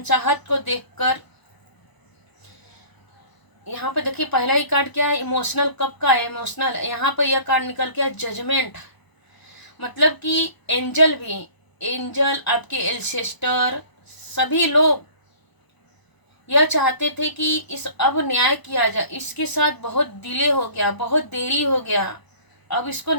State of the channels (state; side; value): late; right; 1.0 ms